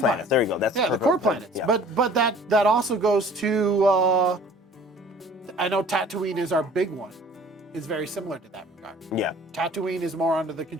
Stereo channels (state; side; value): normal; both; correlation 0.50